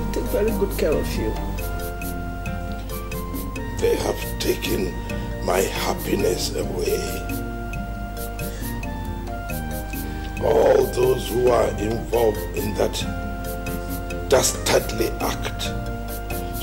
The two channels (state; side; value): identical; both; correlation 1.00